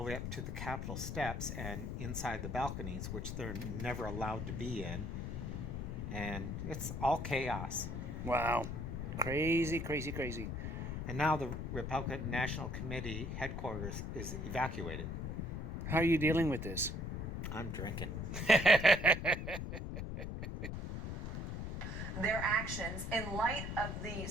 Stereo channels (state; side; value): noise; left; rumble, 4 dB below the sound